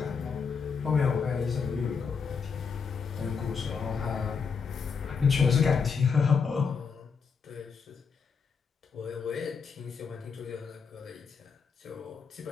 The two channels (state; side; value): quieter; right; 5.7 dB